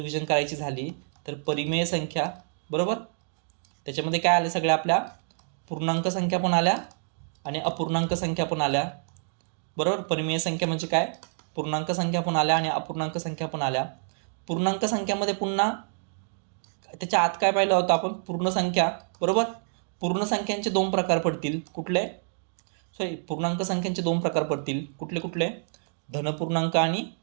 करायची झाली तर परिमेय संख्या बरोबर, त्याच्यामध्ये काय आलं, सगळ्या आपल्या पूर्णांक संख्या पण आल्या आणि अपूर्णांक संख्या पण आल्या बरोबर. परिमेय संख्या म्हणजे काय, पूर्णांक संख्या पण आल्या आणि अपूर्णांक संख्या पण आल्या. पूर्णांक संख्यामध्ये पुन्हा त्याच्या आत काय पाहिलं होतं आपण, पूर्ण संख्या बरोबर. पूर्ण संख्यांचे 2 प्रकार पडतील. कुठले, पूर्णांक संख्यांचे 2 प्रकार पडतील. कुठले, धनपूर्णांक आणि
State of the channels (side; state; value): left; silent; digital silence